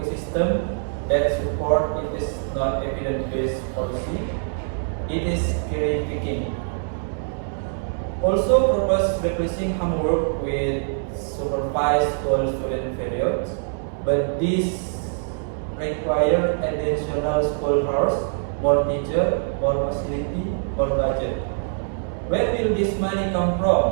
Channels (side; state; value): left; silent; digital silence